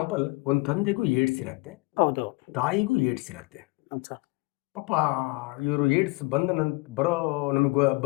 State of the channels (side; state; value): right; quieter; 25.1 dB